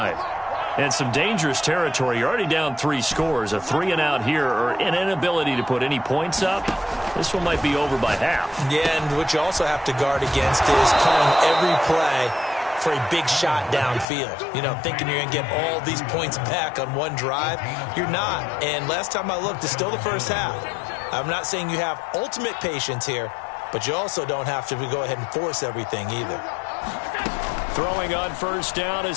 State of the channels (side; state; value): right; drops out; at 14.1 s